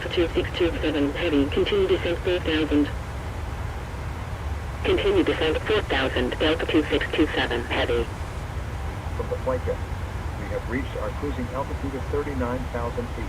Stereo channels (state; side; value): identical; both; correlation 1.00